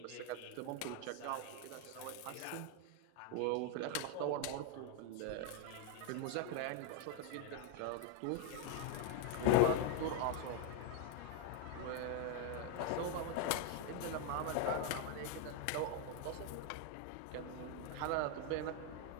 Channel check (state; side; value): different; both; correlation 0.01